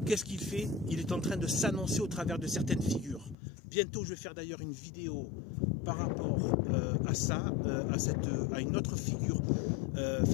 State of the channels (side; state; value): right; drops out; at 3.4 s